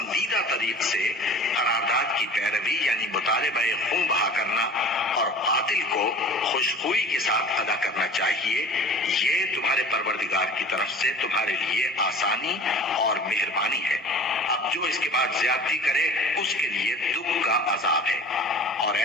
طریق سے قرارداد کی پیروی یعنی مطالبہ خون بہا کرنا اور قاتل کو خوشخوئی کے ساتھ ادا کرنا چاہیے۔ یہ تمہارے پروردگار کی طرف سے تمہارے لیے آسانی اور مہربانی ہے۔ اب جو اس کے بعد زیادتی کرے اس کے لیے دکھ کا عذاب ہے۔ اور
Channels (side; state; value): both; normal; correlation 0.42